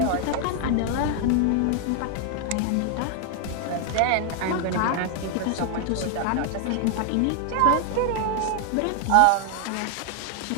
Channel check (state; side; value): different; both; correlation 0.00